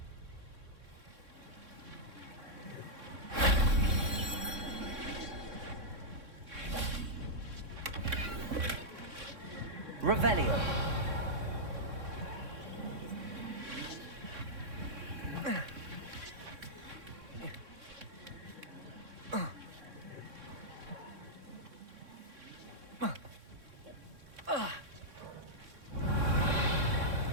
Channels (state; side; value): late; left; 3.6 ms